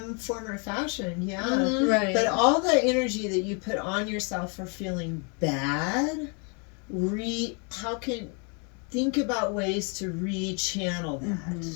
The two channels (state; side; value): quieter; right; 36.1 dB